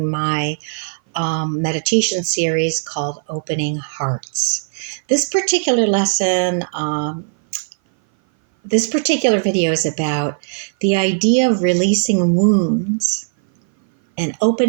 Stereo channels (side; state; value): left; silent; 58 dB below the other